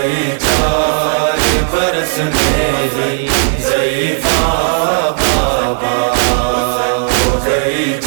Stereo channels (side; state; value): left; silent; digital silence